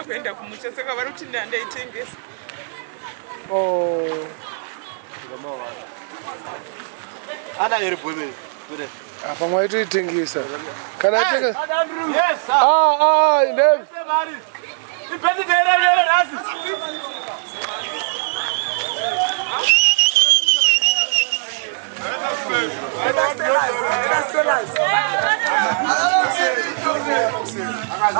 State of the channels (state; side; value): silent; left; 66 dB below the other